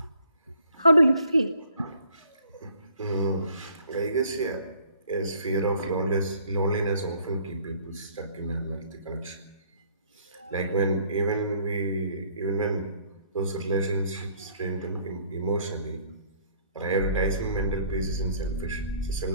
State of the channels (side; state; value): both; inverted; correlation -0.60